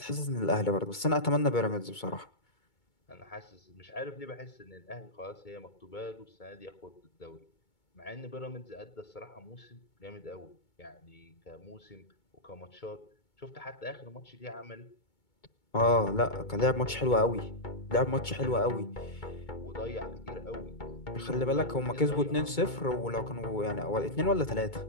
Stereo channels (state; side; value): late; right; 2.2 ms